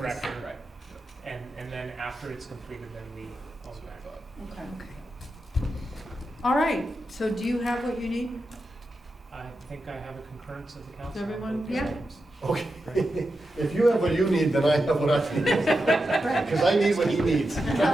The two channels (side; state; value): both; normal; correlation 0.89